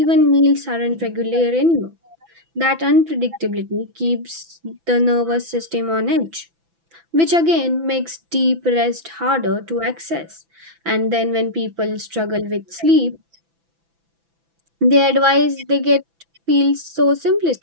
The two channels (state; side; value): late; left; 6.0 ms